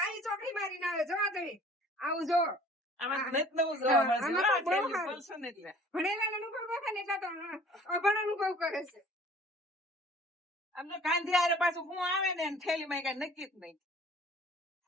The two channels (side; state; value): both; normal; correlation 0.50